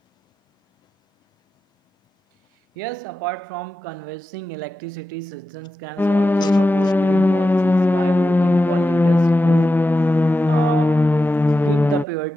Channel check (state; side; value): normal; both; correlation 0.91